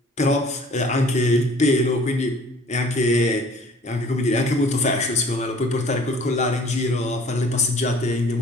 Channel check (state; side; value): normal; both; correlation 0.52